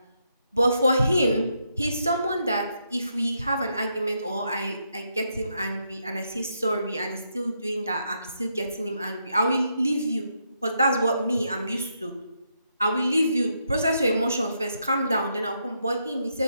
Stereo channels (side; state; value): both; inverted; correlation -0.79